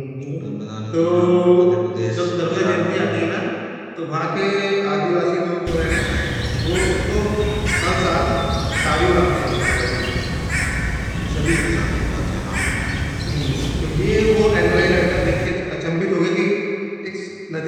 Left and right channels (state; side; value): identical; both; correlation 1.00